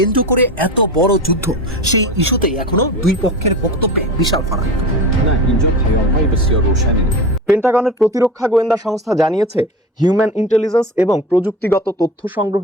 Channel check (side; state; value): both; normal; correlation 0.29